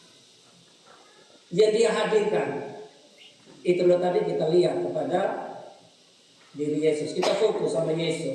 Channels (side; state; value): both; identical; correlation 1.00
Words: yang Dia hadirkan? Itulah tadi kita lihat kepada diri Yesus. Kita fokus sama